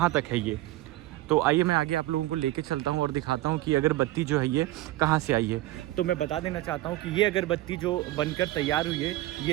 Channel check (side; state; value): left; quieter; 16.9 dB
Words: तक है ये। तो आइए मैं आगे आप लोगों को लेके चलता हूँ और दिखाता हूँ कि अगरबत्ती जो है ये कहाँ से आई है। तो मैं बता देना चाहता हूँ कि ये अगरबत्ती जो बनकर तैयार हुई है,